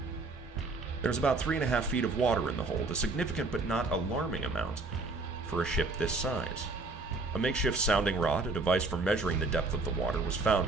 There was about 3.5 feet of water in the hold, a significant but not alarming amount for a ship this size. A makeshift sounding rod, a device for measuring the depth of the water, was found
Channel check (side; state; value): left; quieter; 3.5 dB